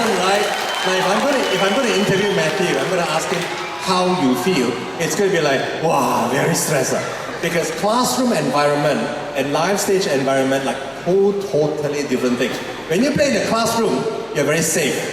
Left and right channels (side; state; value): both; identical; correlation 1.00